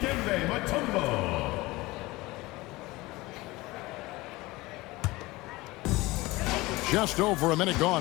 Mutombo. Just over a minute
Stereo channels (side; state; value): right; quieter; 20.8 dB